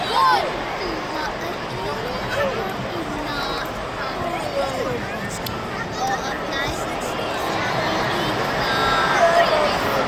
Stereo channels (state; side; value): identical; both; correlation 1.00